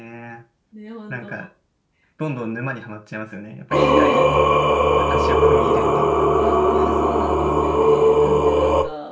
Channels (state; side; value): identical; both; correlation 1.00